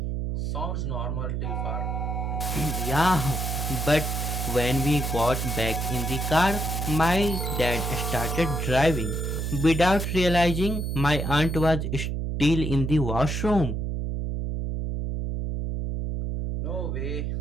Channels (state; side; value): noise; right; hum, 2 dB below the sound